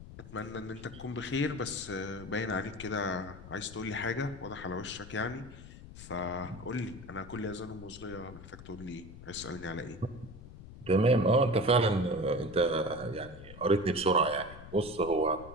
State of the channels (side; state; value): left; noise; rumble, 15 dB below the sound